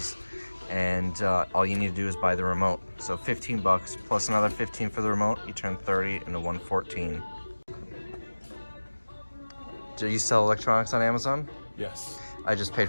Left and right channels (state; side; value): inverted; both; correlation -1.00